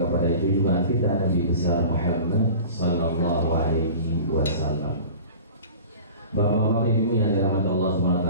junjungan kita Nabi besar Muhammad sallallahu alaihi wasallam. Bapak-bapak ibu yang dirahmati Allah SWT,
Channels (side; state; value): both; inverted; correlation -0.39